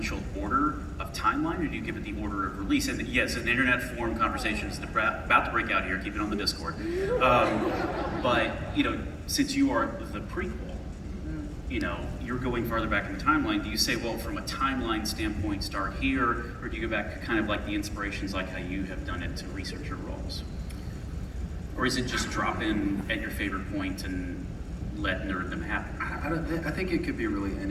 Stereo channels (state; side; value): identical; both; correlation 1.00